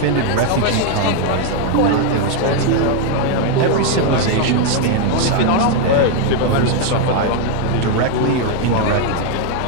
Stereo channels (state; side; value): different; both; correlation 0.00